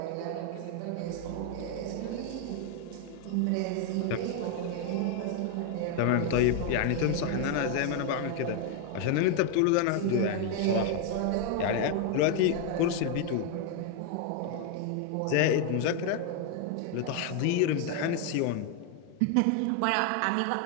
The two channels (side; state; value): both; different; correlation 0.01